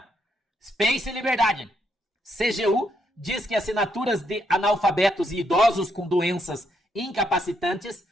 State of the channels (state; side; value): normal; both; correlation 0.77